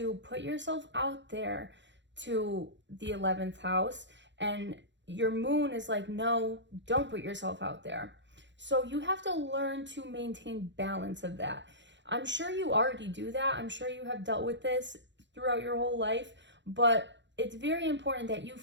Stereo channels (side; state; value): left; late; 0.53 ms